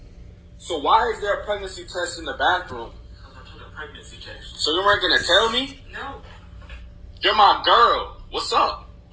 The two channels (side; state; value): both; identical; correlation 1.00